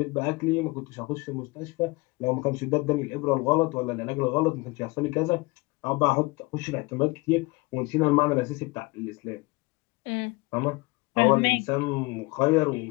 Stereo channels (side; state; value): right; quieter; 24.4 dB